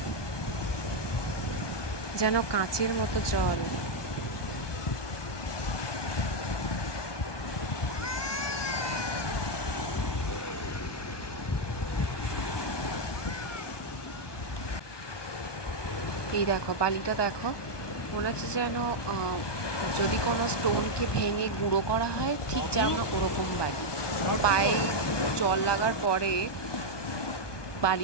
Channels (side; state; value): right; late; 1.2 ms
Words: যেন কাঁচের মতো জল। এই দেখো বালিটা দেখো, মনে হচ্ছে যেন যদি কোনো স্টোনকে ভেঙে গুঁড়ো করা হয় ঠিক যেমন ওরকম বালি। পায়ে জল লাগার পরে